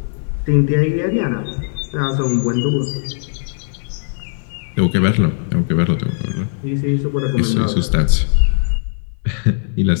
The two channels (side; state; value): right; silent; 58 dB below the other